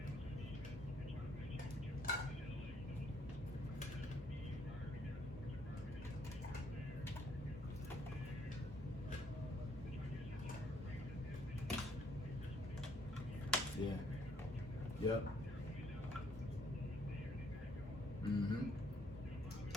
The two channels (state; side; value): normal; both; correlation 0.68